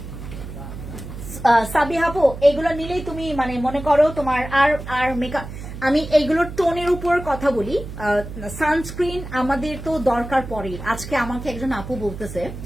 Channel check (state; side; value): noise; right; hum, 10 dB below the sound